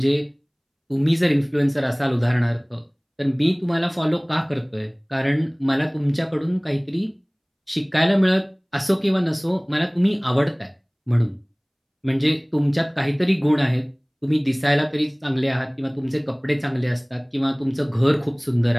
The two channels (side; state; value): both; identical; correlation 1.00